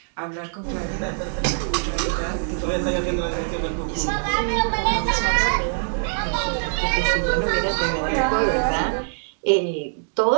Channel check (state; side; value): silent; left; digital silence